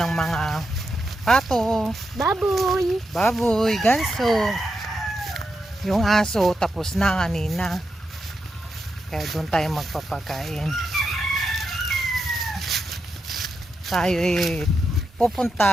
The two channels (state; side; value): normal; both; correlation 0.86